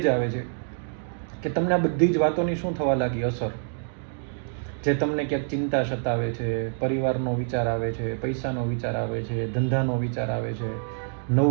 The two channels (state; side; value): silent; left; digital silence